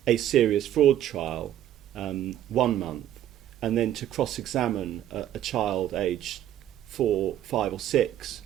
a serious fraud trial 1 month and then to cross-examine a child aged 4, 5 or 6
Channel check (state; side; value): quieter; left; 11.7 dB